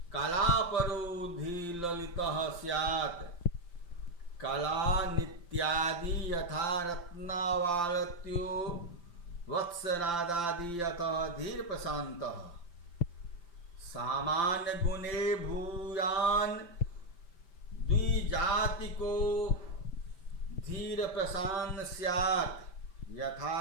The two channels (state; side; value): late; right; 5.8 ms